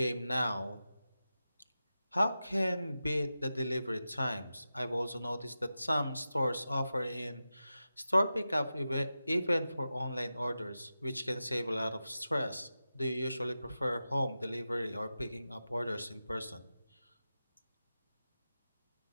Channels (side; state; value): both; inverted; correlation -0.93